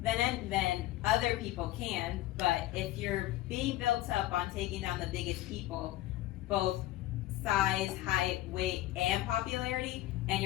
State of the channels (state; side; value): quieter; right; 15.6 dB